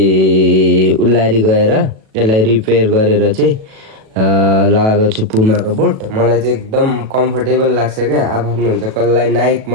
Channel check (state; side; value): late; left; 37 ms